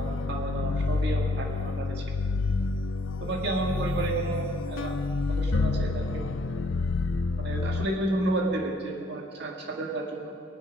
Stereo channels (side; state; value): both; normal; correlation 0.66